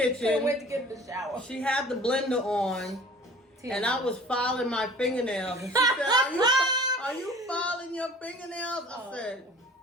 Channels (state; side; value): normal; both; correlation 0.46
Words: Couldn't wait to get in the shower. She had the blender on. And I was filing my fingernails. And she said, are you filing your fingernails? I said,